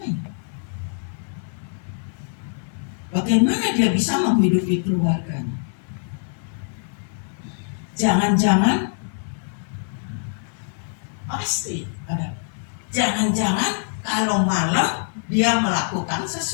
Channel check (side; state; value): right; silent; 58 dB below the other